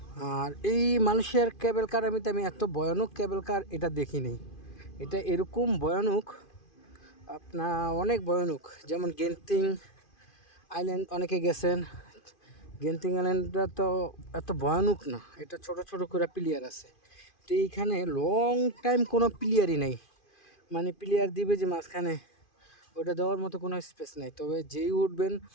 আর এই মালয়েশিয়ার কেবল কার আমি এত ভয়ানক কেবল কার এটা দেখিনি। এটা এরকম ভয়ানক, আপনার অনেক ভয়ানক। যেমন গেন্তিং আইল্যান্ড অনেকে গেছেন, গেন্তিং আইল্যান্ডটা তো এত ভয়ানক না, এটা ছোট ছোট করে প্লেয়ার আছে। তো এইখানে লং টাইম কোনো প্লেয়ারই নেই, মানে প্লেয়ার দিবে যে মাঝখানে, ওটা দেওয়ার মতো কোনো স্পেস নেই। তবে যেই উঠবেন,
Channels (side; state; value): right; late; 2.5 ms